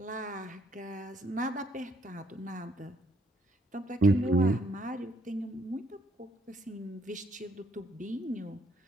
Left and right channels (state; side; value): normal; both; correlation 0.69